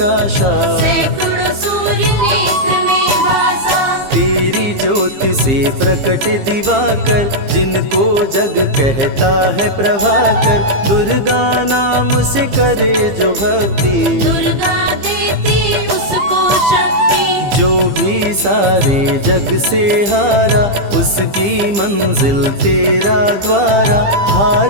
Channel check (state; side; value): late; left; 15 ms